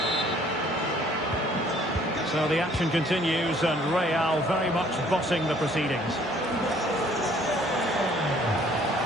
So the action continues, and Real very much bossing the proceedings.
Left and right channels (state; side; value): normal; both; correlation 0.59